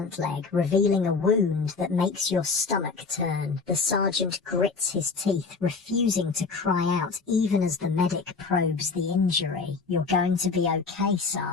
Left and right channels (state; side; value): quieter; right; 4.5 dB